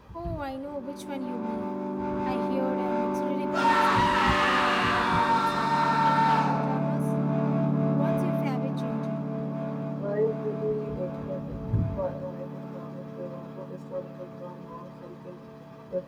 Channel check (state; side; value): identical; both; correlation 1.00